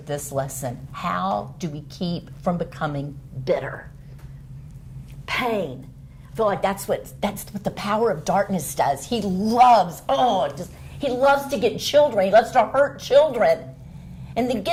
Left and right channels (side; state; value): both; identical; correlation 1.00